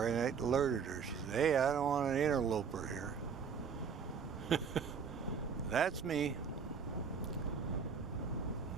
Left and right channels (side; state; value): left; quieter; 6.4 dB